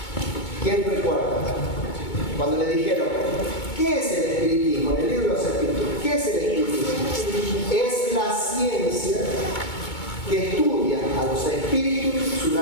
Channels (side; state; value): right; late; 2.2 ms